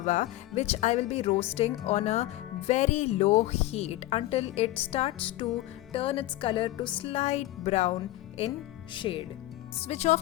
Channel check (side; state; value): right; quieter; 16.5 dB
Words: which I will be roasting on a very low heat until it starts to turn its color to slight brown in shade. Switch